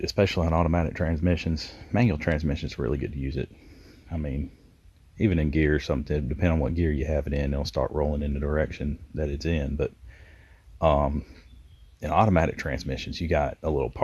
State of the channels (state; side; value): identical; both; correlation 1.00